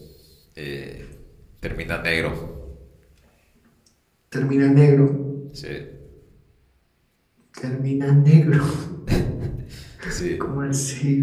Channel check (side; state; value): both; identical; correlation 1.00